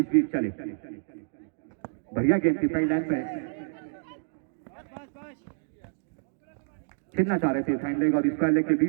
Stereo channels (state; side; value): silent; left; digital silence